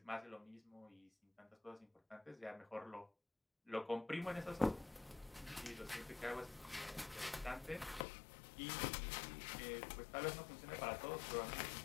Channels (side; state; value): right; drops out; at 8.1 s